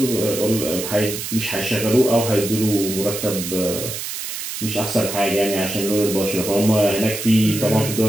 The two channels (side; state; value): right; noise; hiss, 6 dB below the sound